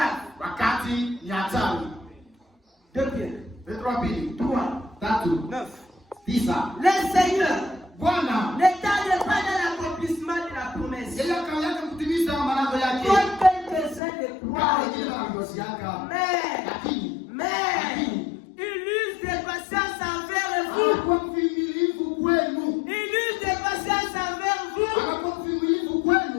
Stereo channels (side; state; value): right; drops out; at 14.0 s